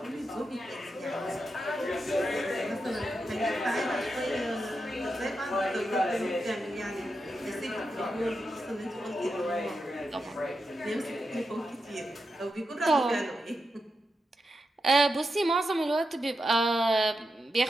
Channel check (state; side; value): normal; both; correlation 0.87